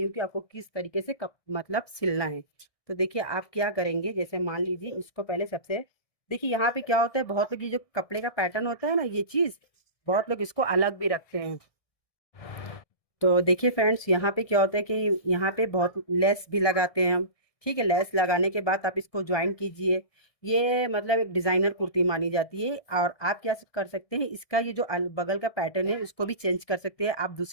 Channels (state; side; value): late; right; 1.7 ms